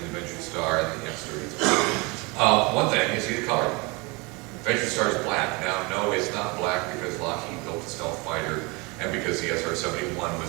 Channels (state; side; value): quieter; left; 27.4 dB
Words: the Venture Star and the X-33. One thing, you see the color. Venture Star is black. Now, no, it's not black because Lockheed built the stealth fighter and because the SR-71